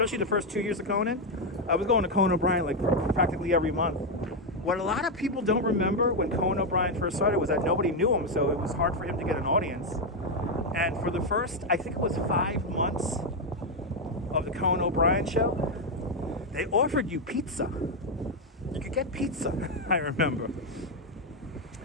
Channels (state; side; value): normal; both; correlation 0.04